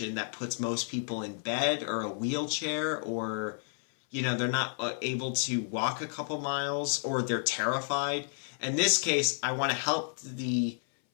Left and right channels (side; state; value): right; silent; 57 dB below the other